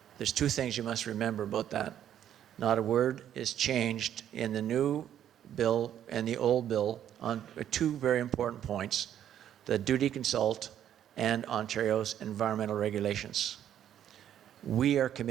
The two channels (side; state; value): left; quieter; 10.5 dB